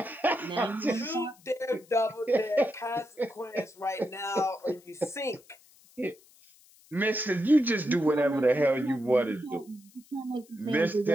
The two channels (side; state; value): left; noise; hiss, 27 dB below the sound